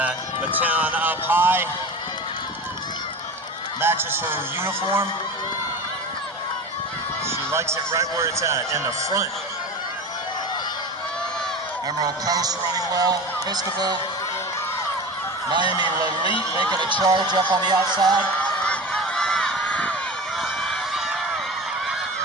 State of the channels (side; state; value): both; normal; correlation 0.31